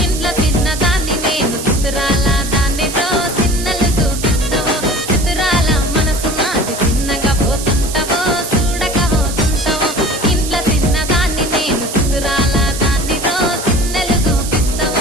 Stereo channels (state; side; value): noise; right; hiss, 8 dB below the sound